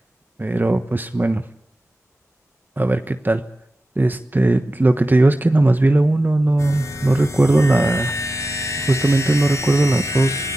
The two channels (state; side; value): normal; both; correlation 0.93